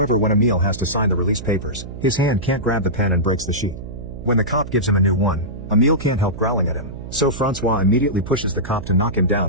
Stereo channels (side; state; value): right; noise; hum, 11 dB below the sound